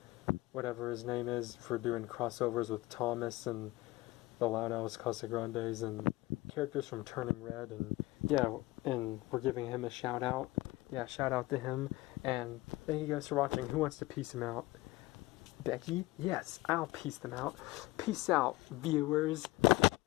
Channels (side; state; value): right; quieter; 19.4 dB